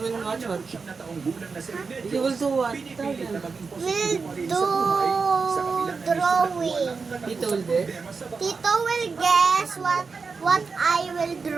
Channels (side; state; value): left; quieter; 4.8 dB